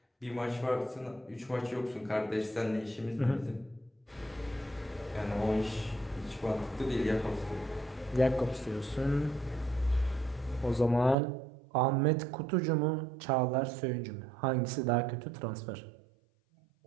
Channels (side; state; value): left; drops out; at 11.2 s